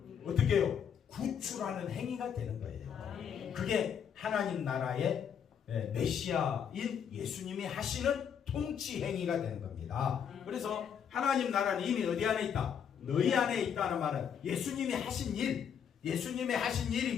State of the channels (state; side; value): quieter; right; 7.9 dB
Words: 어떻게 해요? 구출하는 행위가 되는 거예요. 그게 하나님 나라의 메시아인 예수님이 하시는 통치 행위가 되는 겁니다. 그래서 하나님 나라는 이미 어디 안에 있다? 너희 안에 있다는 말은 예수님이 하신 일, 예수님이 하신 일이